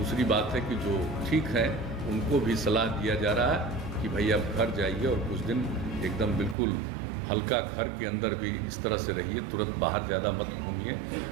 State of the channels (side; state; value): left; drops out; at 6.6 s